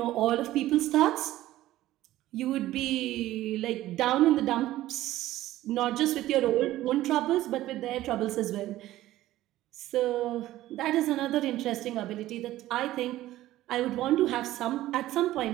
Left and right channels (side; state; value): left; quieter; 15.2 dB